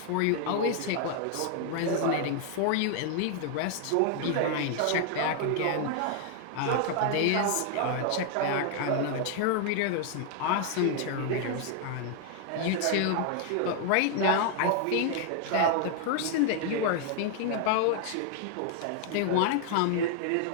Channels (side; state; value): both; different; correlation 0.00